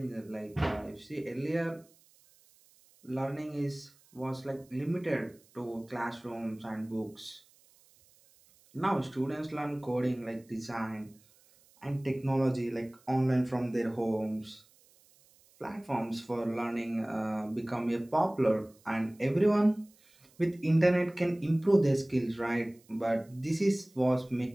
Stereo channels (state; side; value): noise; right; hiss, 30 dB below the sound